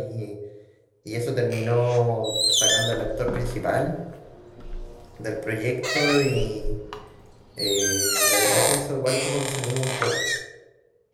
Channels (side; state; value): both; identical; correlation 1.00